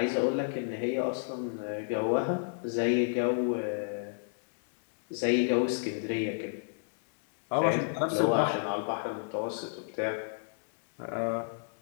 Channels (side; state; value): right; silent; digital silence